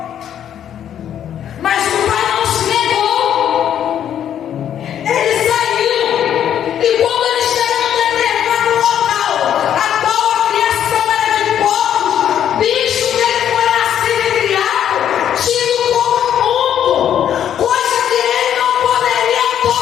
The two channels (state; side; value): quieter; right; 9.9 dB